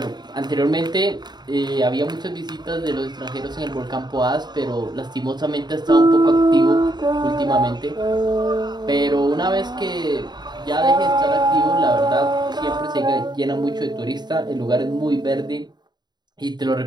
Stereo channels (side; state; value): left; late; 0.20 ms